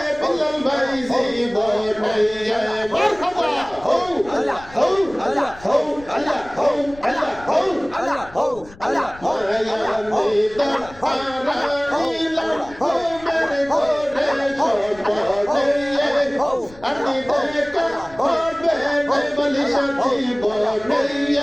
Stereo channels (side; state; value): left; noise; rumble, 21 dB below the sound